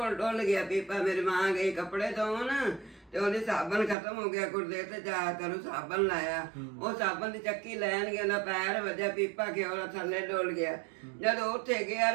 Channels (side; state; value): left; drops out; at 4.0 s